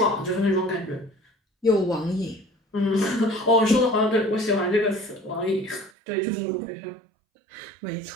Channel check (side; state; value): left; drops out; at 5.9 s